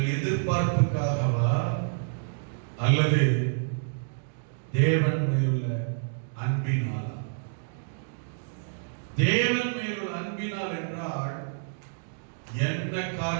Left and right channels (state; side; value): silent; left; digital silence